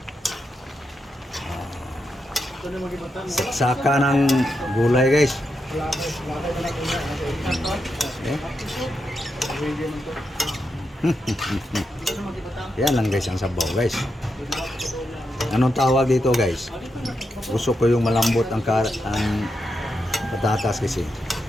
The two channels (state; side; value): normal; both; correlation 0.85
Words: Saksaka ng gulay guys. Okay. Yan lang guys ang sabaw guys. Anong tawag dito guys? Gusto ko yung malambot ang patatas kasi